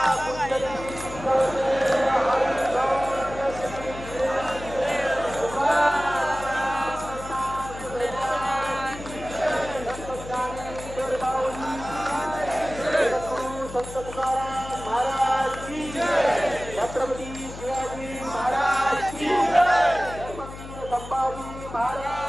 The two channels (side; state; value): left; noise; hum, 13 dB below the sound